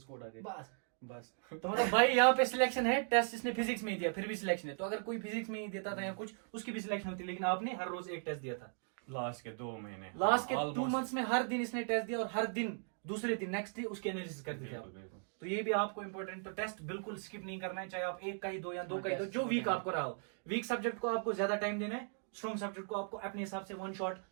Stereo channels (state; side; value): silent; left; 53 dB below the other